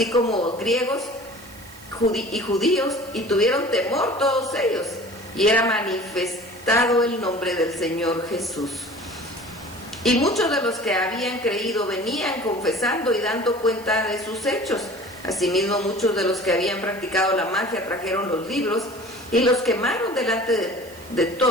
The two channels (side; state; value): right; noise; hiss, 21 dB below the sound